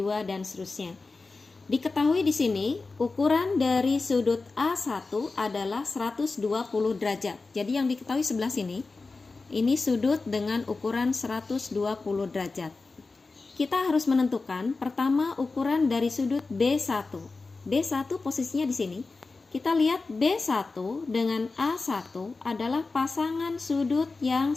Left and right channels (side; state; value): right; quieter; 3.8 dB